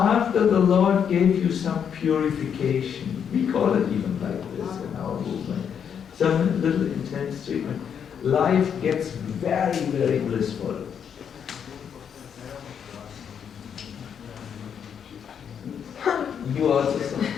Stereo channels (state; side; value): quieter; right; 7.8 dB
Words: the Lord gave you some purification, we call it even like this in our movement, some little intense treatment, life gets very, very blissful. You also saw.